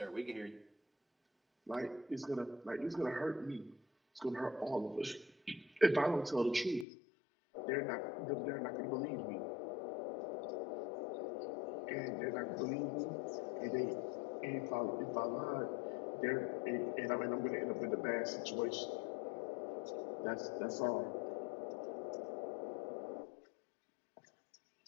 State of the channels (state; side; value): drops out; right; at 6.9 s